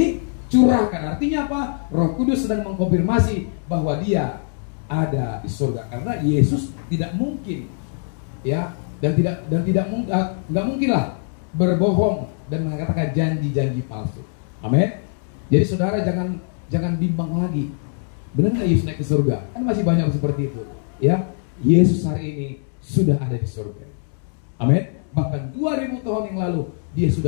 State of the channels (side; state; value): right; silent; 60 dB below the other